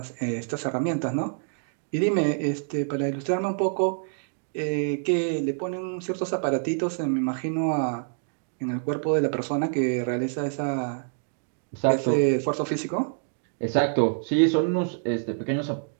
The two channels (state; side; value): silent; left; digital silence